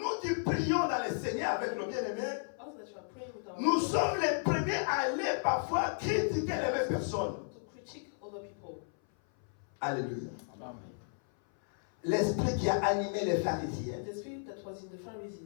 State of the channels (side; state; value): right; silent; 55 dB below the other